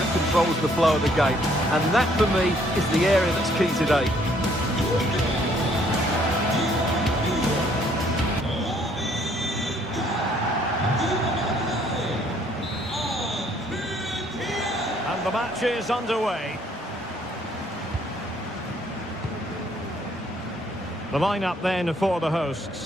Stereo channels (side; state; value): both; normal; correlation 0.64